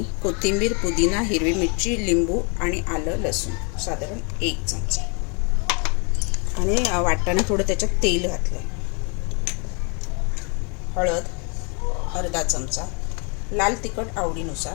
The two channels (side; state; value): right; quieter; 34.9 dB